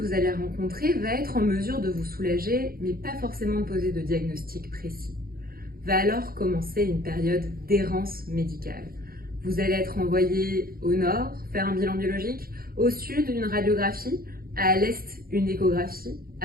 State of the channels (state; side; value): late; left; 0.43 ms